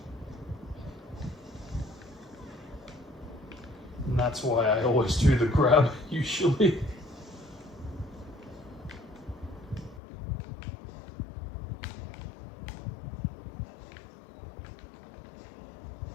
And that's why I always do the grab, usually.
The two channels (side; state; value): right; drops out; at 10.0 s